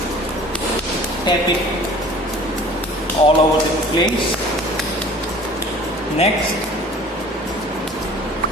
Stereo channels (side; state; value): both; normal; correlation 0.46